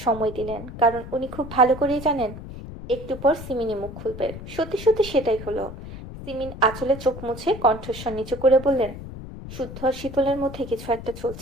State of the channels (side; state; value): left; noise; rumble, 11 dB below the sound